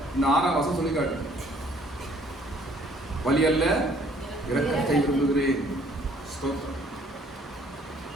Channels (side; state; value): both; normal; correlation 0.60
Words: இந்த 6ஆம் வசனம் சொல்லி காட்டு. பலி அல்ல இரக்கத்தை விரும்புகிறேன்.